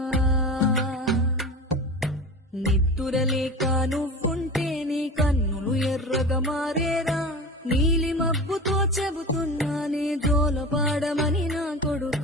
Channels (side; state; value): both; normal; correlation 0.31